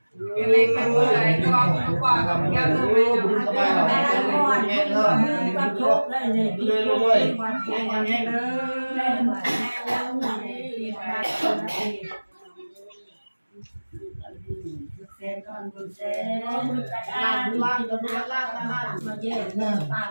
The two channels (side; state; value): both; inverted; correlation -1.00